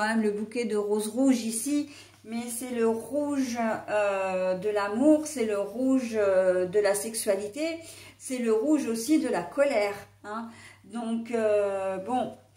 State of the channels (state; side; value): identical; both; correlation 1.00